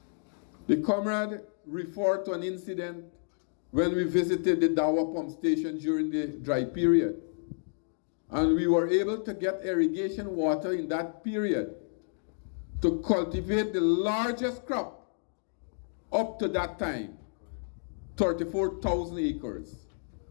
the comrade referred to an incident when we visited the Dawa pump station during the dry period. And we were able to get irrigation water in that period to cultivate the largest crop up to that time, 34,000 acres.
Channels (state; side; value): silent; right; digital silence